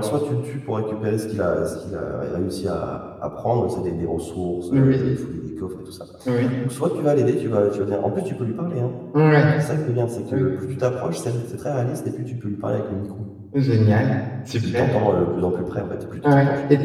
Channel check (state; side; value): identical; both; correlation 1.00